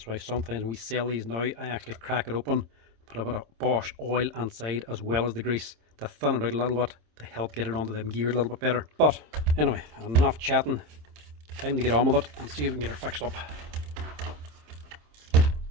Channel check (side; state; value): left; late; 26 ms